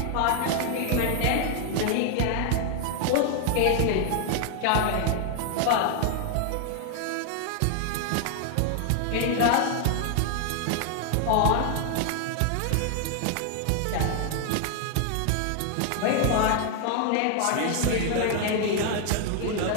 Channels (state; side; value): different; both; correlation 0.00